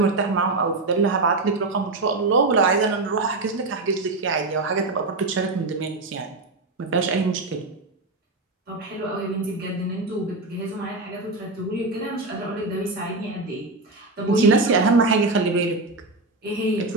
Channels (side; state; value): left; quieter; 3.3 dB